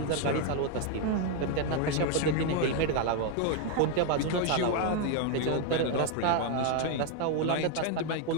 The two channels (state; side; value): different; both; correlation 0.01